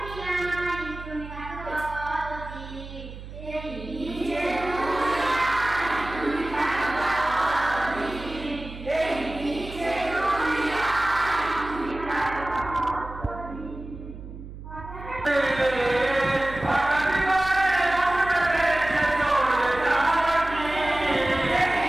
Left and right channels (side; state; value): right; noise; hum, 13 dB below the sound